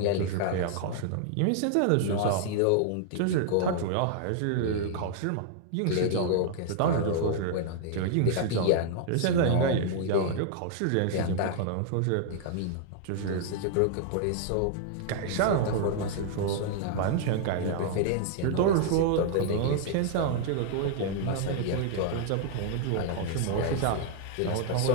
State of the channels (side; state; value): both; different; correlation -0.01